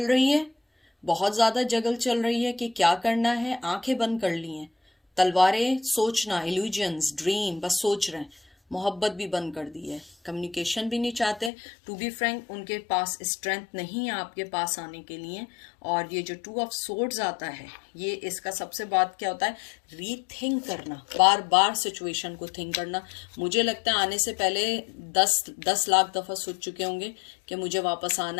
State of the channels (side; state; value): right; drops out; at 11.5 s